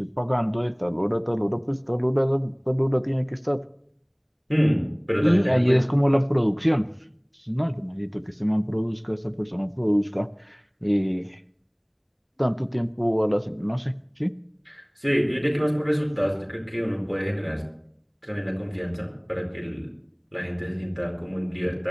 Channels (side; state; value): both; identical; correlation 1.00